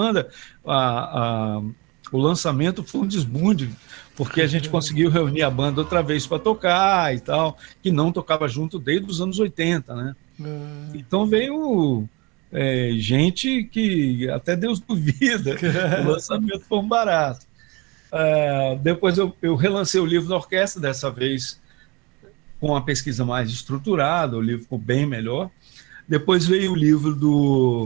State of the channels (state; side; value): quieter; left; 26.1 dB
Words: O lançamento foi um desbunde, porque a gente conseguiu reunir a banda outra vez para tocar e tal, que não tocava junto desde os anos 80, né? Então veio gente que até Deus duvida. O lançamento foi um barato. Depois eu relancei o livro da orquestra, dessa vez com uma pesquisa mais estruturada, o livro ficou bem melhor. Depois veio o